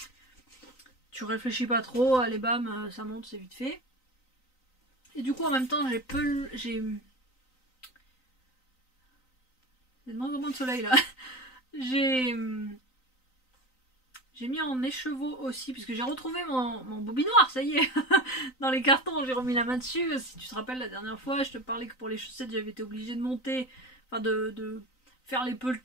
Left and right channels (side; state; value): right; late; 3.9 ms